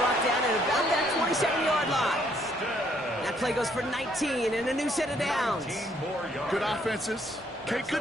down at about that 27-yard line. That play goes for 19 and a new set of downs. Good offenses. Okay,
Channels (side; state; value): both; normal; correlation 0.68